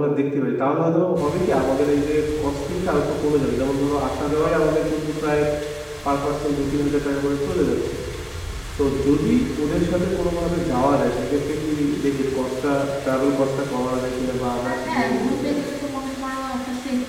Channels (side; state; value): both; identical; correlation 1.00